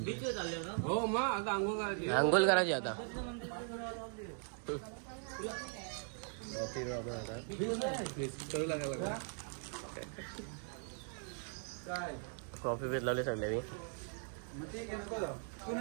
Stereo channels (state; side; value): silent; left; 51 dB below the other